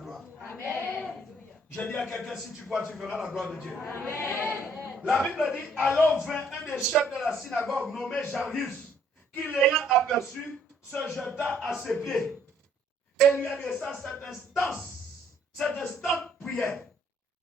Amen. Je dis à quelqu'un, si tu crois, tu verras la gloire de Dieu. Amen. La Bible dit, alors vint un des chefs de la synagogue nommé Jairus, qui l'ayant aperçu, se jeta à ses pieds et lui adressa cette instante prière.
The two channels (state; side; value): normal; both; correlation 0.64